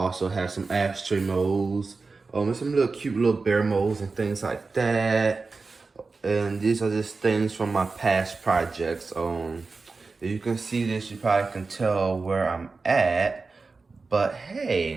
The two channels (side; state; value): left; quieter; 4.1 dB